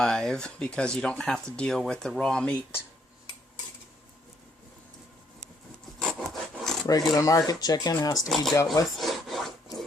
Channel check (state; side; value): normal; both; correlation 0.69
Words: because you don't have to deal with the raw meat. Regular market chicken has to be dealt with.